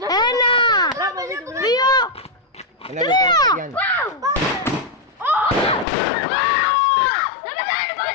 δύο, Ένα λεπτό. Γιάννη.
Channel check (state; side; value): drops out; right; at 5.9 s